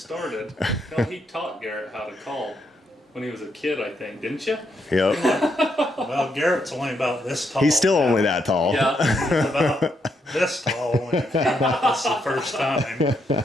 he taught Garrett how to call when he was a kid, I think, didn't you? Yep. Well, Garrett's only about this tall. He's still only that tall. Yeah. He's about this tall when he came with us the first time.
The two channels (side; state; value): both; normal; correlation 0.78